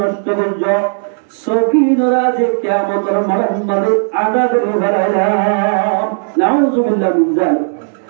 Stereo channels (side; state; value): left; silent; digital silence